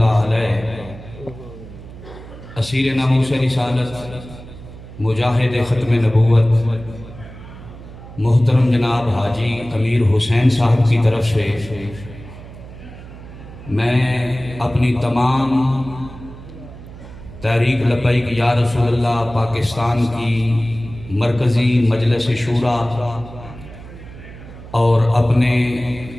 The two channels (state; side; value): noise; right; hum, 16 dB below the sound